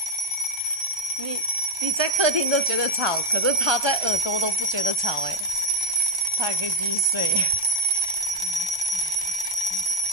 你在客厅都觉得吵，可是他在耳朵都不觉得吵哎，他还可以继续睡。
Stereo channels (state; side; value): late; left; 1.2 ms